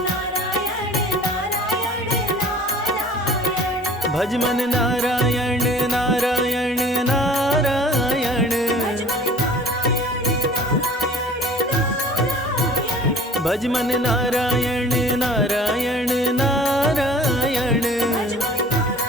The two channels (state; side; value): normal; both; correlation 0.48